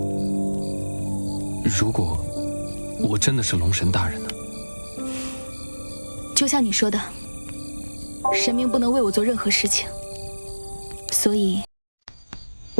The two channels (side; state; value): both; inverted; correlation -1.00